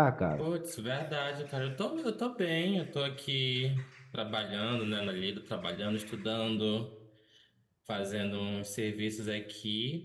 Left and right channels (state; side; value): identical; both; correlation 1.00